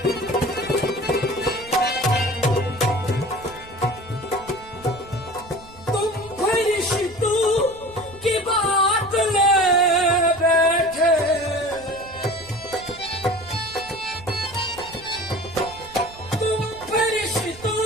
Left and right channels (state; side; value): noise; right; rumble, 21 dB below the sound